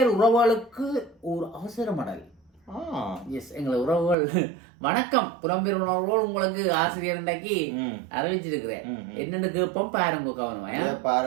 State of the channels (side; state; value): left; drops out; at 4.2 s